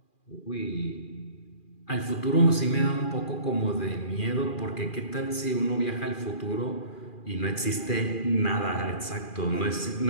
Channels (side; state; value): right; late; 2.4 ms